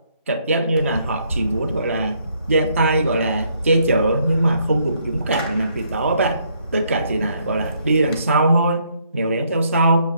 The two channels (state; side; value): inverted; both; correlation -0.70